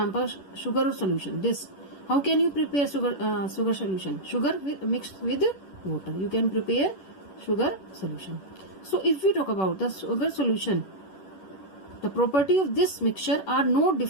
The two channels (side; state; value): right; late; 11 ms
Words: sugar solution. This, how can you prepare sugar solution? Sugar mixed with water. You can prepare sugar solution. So if we talk about the sugar solution, the property of this mixture are no